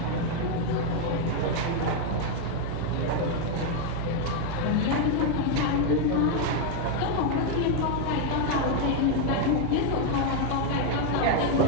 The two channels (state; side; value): different; both; correlation 0.01